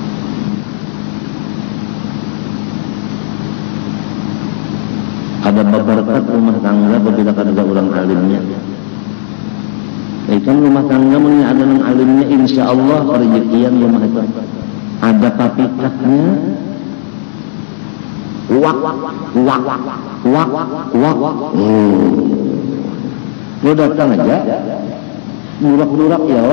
Ada berkat rumah tangga apabila ada orang alimnya. Kan rumah tangga punya ada orang alimnya, insya Allah rezekian rumah itu. Ada papikatnya, wak. Lo datang aja, burak-burak ya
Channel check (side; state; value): right; silent; digital silence